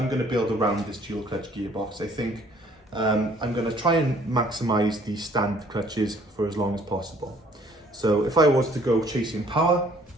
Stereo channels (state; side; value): normal; both; correlation 0.59